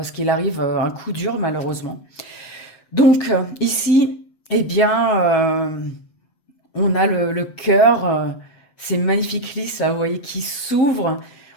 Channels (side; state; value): right; late; 7.9 ms